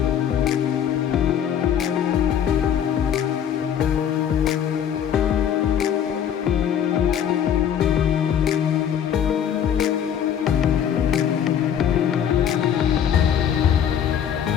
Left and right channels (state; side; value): quieter; right; 9.1 dB